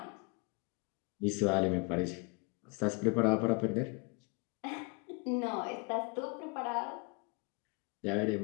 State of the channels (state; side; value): quieter; right; 31.3 dB